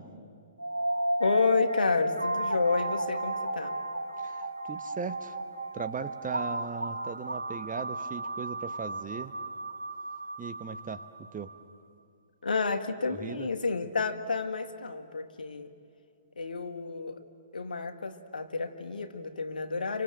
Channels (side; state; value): both; inverted; correlation -0.77